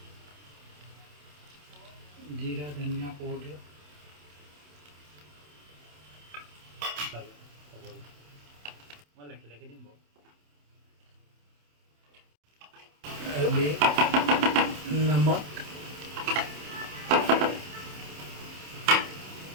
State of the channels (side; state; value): left; late; 27 ms